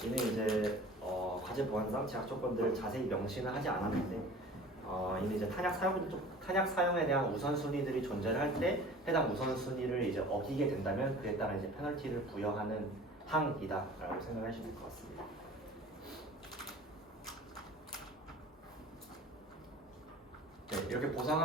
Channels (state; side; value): normal; both; correlation 0.43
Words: 이는 이제 과제 보안상 제약 조건들을 자세히 명시는 하지 않았는데 이는 이제 탄약 사용에 대한 우선순위들이 존재를 할 때 해당 우선순위를 이제 어기게 된다면 그에 따라 이제 페널티를 부여하는 항이다라고 생각하시면 될 것 같습니다. 네, 이렇게 보상